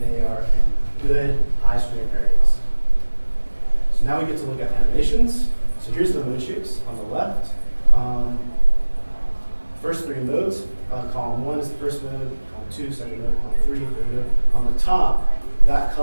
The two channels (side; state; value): both; inverted; correlation -1.00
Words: they are in good high strain areas. So now we get to look at animations. So here's the mode shapes on the left. First 3 modes. Column 1 is the first mode, column 2, second mode, column 3, third mode. On the top, that